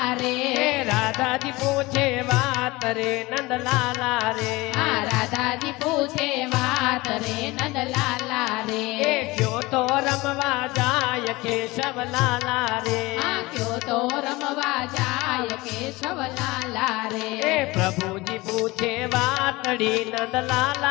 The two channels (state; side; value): quieter; right; 21.6 dB